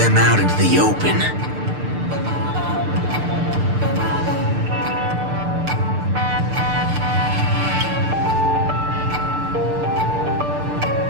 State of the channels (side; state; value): left; late; 6.7 ms